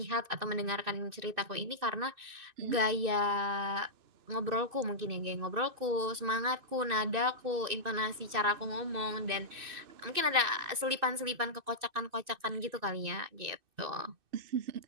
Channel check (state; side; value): late; left; 2.6 ms